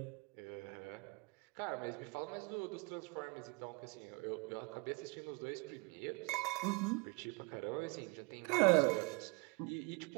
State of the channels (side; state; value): left; quieter; 27.5 dB